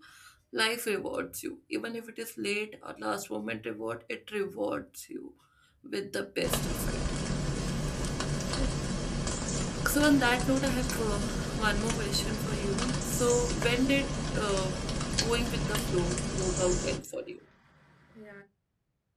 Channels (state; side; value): identical; both; correlation 1.00